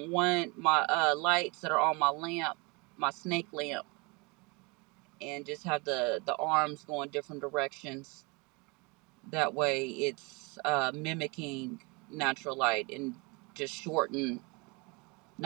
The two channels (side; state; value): left; quieter; 28.2 dB